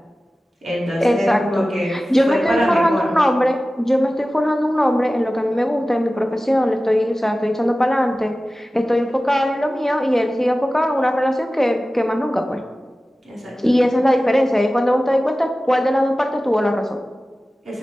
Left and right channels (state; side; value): normal; both; correlation 0.96